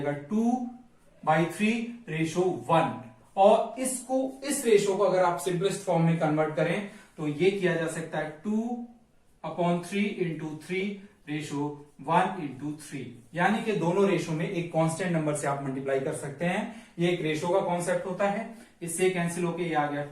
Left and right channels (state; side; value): identical; both; correlation 1.00